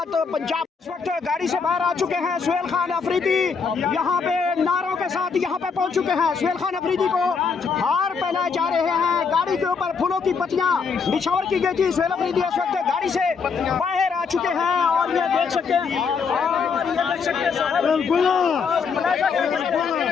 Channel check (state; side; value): quieter; right; 5.5 dB